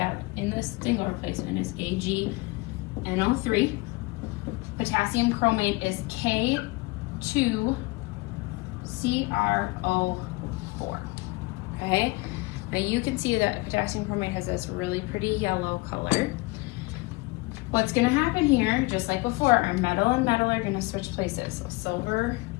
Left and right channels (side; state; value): right; quieter; 24.0 dB